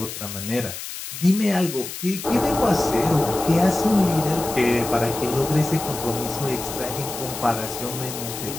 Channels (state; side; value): noise; left; hiss, 9 dB below the sound